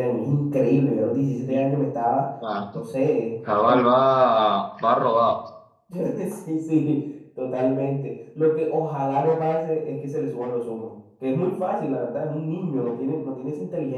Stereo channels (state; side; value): identical; both; correlation 1.00